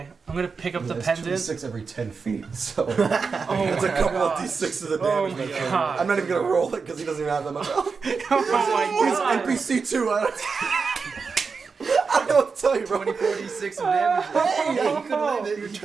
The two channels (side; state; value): left; quieter; 5.1 dB